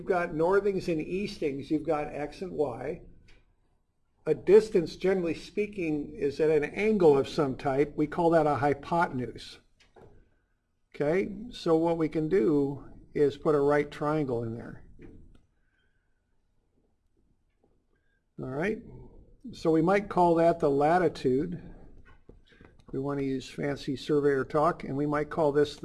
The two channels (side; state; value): both; identical; correlation 1.00